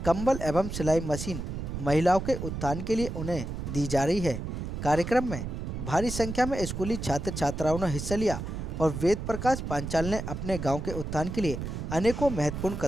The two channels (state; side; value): noise; right; rumble, 5 dB below the sound